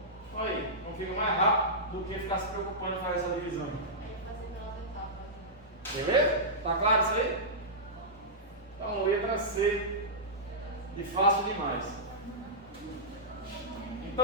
Olha aí, não fica mais rápido do que ficar se preocupando em fazer essa divisão. Beleza? Tá claro isso aí? Então, letra C de fácil demais.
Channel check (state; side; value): normal; both; correlation -0.14